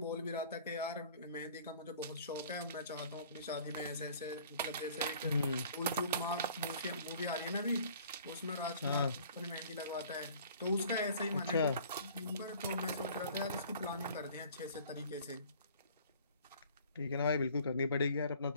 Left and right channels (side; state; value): both; inverted; correlation -0.51